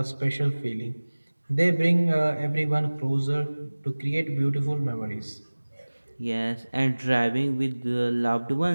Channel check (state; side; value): inverted; both; correlation -1.00